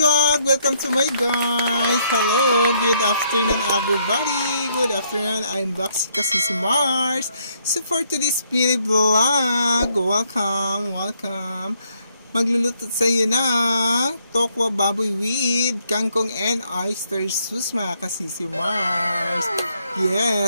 Welcome to my guys! Hello! Good afternoon everybody! Good afternoon! I'm back si Mars. So for today's mini vlog, welcome! Magluluto sa iyo ng tokwa baboy with kangkong and oyster sauce mga kasisi Mars.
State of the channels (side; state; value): both; inverted; correlation -0.71